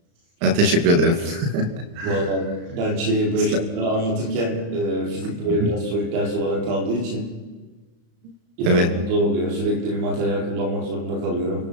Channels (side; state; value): left; late; 35 ms